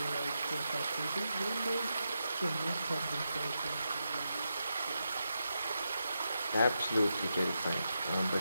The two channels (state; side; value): inverted; both; correlation -0.86